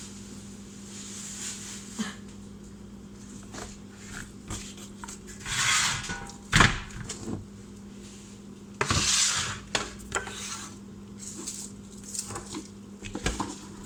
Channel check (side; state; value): both; identical; correlation 1.00